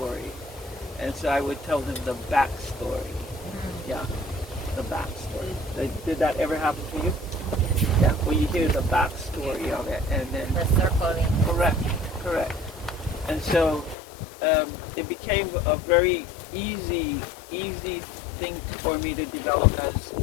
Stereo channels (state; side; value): drops out; right; at 14.0 s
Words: and so I would tell them the backstory. Yeah, the backstory. Did that ever happen to you? Yeah, well, you hear the backstory of it, and then The circling. correct. And so it became a very easy thing for me to develop as